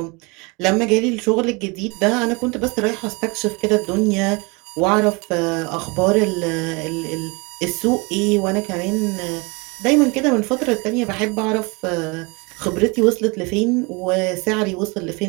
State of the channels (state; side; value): quieter; left; 28.3 dB